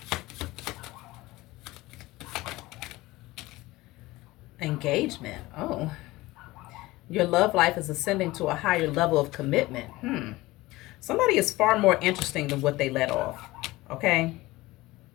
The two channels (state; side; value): quieter; right; 19.4 dB